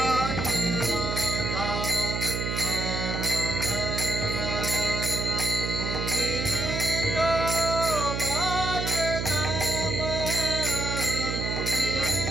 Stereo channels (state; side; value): noise; right; hum, 2 dB below the sound